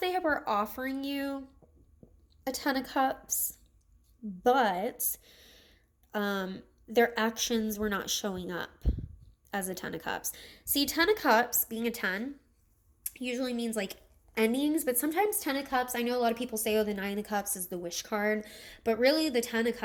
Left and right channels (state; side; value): identical; both; correlation 1.00